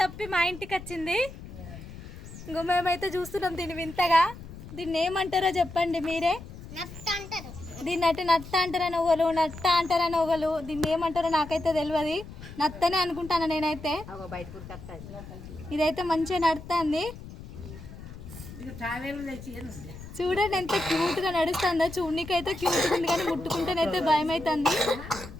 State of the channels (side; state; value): left; noise; rumble, 14 dB below the sound